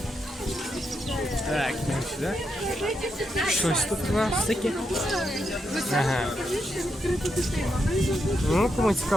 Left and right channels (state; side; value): normal; both; correlation 0.83